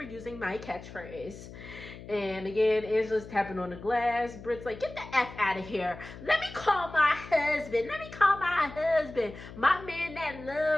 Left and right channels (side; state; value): left; noise; hum, 15 dB below the sound